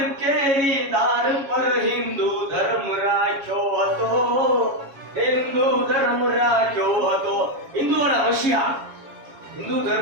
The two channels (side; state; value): left; late; 7.2 ms